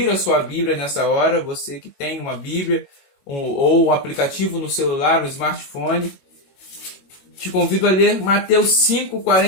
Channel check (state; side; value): late; right; 21 ms